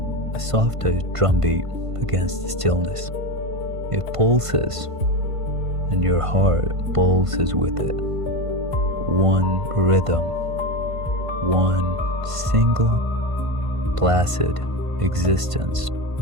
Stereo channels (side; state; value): left; late; 1.5 ms